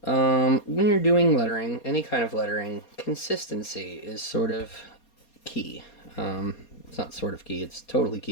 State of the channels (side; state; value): right; late; 4.2 ms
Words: when you're doing lettering, any kind of lettering, consistency is sort of key. It's not sort of key, it's totally